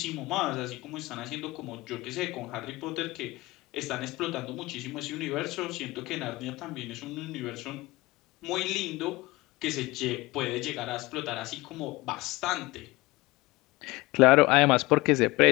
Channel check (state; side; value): quieter; right; 21.2 dB